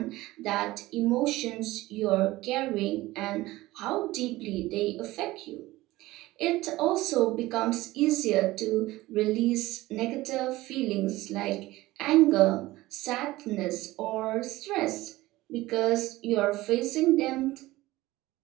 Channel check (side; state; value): left; quieter; 18.1 dB